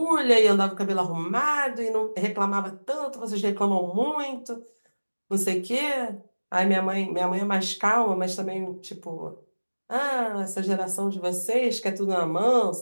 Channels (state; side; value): inverted; both; correlation -1.00